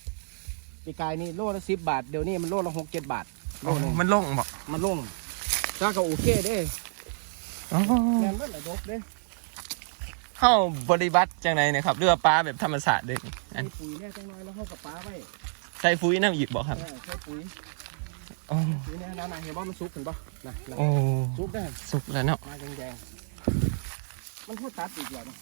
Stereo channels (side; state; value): left; silent; digital silence